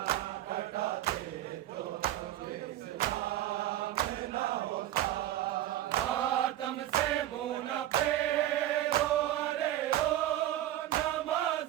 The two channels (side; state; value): left; quieter; 13.6 dB